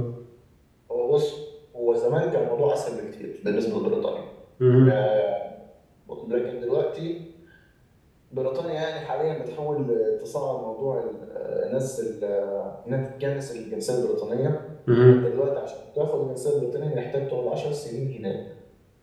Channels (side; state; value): both; identical; correlation 1.00